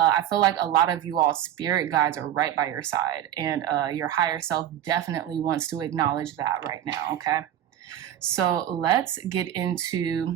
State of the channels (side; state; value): left; quieter; 11.1 dB